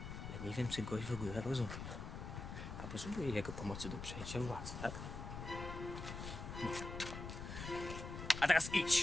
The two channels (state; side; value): noise; left; rumble, 7 dB below the sound